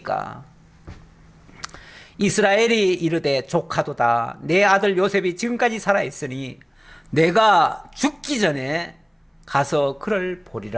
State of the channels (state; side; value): identical; both; correlation 1.00